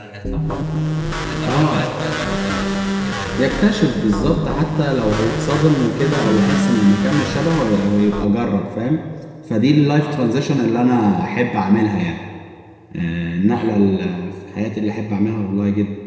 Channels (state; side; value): identical; both; correlation 1.00